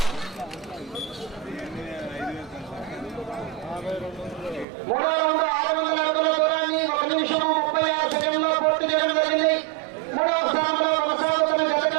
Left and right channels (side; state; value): left; drops out; at 4.7 s